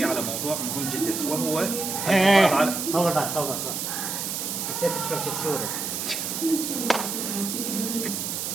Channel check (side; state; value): right; noise; hiss, 3 dB below the sound